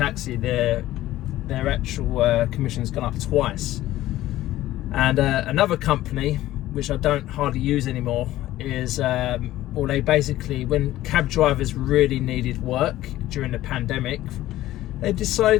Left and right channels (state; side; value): quieter; right; 15.1 dB